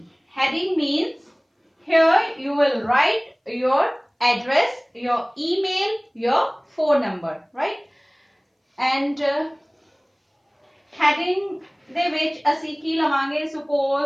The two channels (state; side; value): identical; both; correlation 1.00